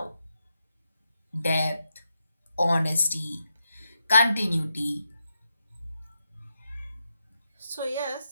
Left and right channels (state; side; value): inverted; both; correlation -0.83